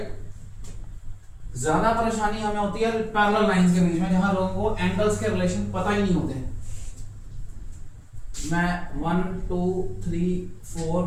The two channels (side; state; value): both; identical; correlation 1.00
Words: ज्यादा परेशानी हमें होती है पैरेलल लाइंस के बीच में, जहां लोगों को एंगल्स के रिलेशन पता ही नहीं होते। मैं 1 2 3 4